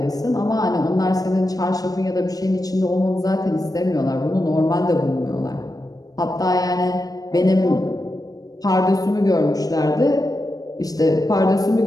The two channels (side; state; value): right; late; 0.18 ms